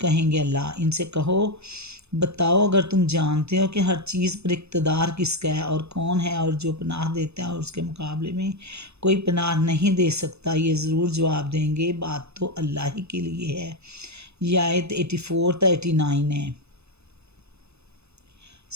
کہیں گے اللہ۔ ان سے کہو بتاؤ اگر تم جانتے ہو کہ ہر چیز پر اقتدار کس کا ہے اور کون ہے اور جو پناہ دیتا ہے اور اس کے مقابلے میں کوئی پناہ نہیں دے سکتا، یہ ضرور جواب دیں گے بات تو اللہ ہی کے لیے ہے۔ یہ آیت 84 تا 89 ہے۔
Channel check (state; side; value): late; left; 0.80 ms